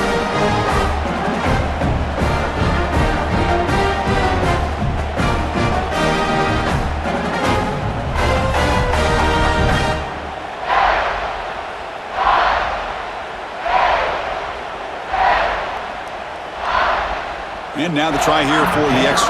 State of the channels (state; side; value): identical; both; correlation 1.00